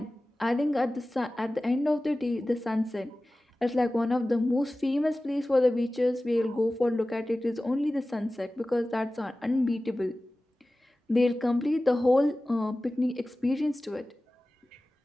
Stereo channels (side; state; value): both; normal; correlation 0.96